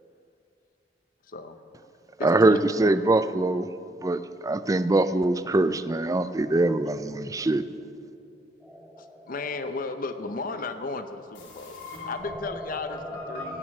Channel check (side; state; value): both; normal; correlation 0.69